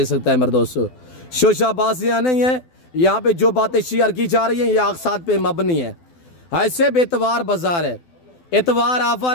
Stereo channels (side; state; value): right; late; 12 ms